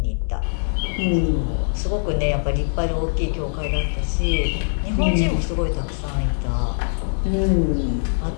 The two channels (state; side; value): silent; right; digital silence